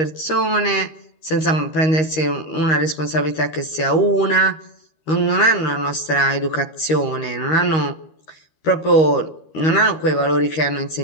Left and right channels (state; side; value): late; right; 13 ms